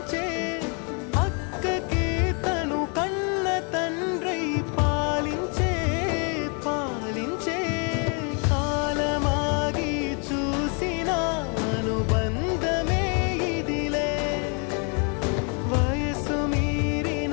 అక్కకే తను కన్న తండ్రై పాలించే పాలించే కాలమాగి చూసిన అనుబంధమే ఇదిలే వయసు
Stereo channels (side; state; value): right; quieter; 37.3 dB